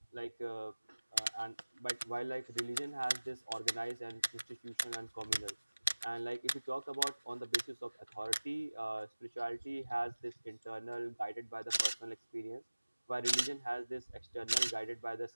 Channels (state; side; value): inverted; both; correlation -1.00